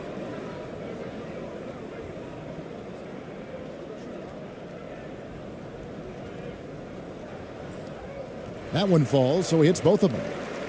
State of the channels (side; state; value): both; identical; correlation 1.00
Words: That one falls, so he hits both of them.